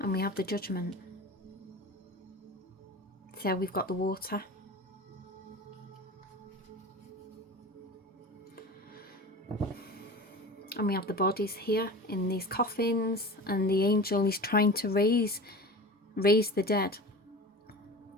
we have the Judgment. So we've got the water. And we have the bodies here in these coffins. And the angel is trying to raise the dead.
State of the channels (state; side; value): normal; both; correlation 0.34